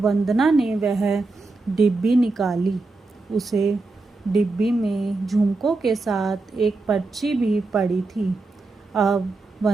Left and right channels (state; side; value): quieter; left; 3.5 dB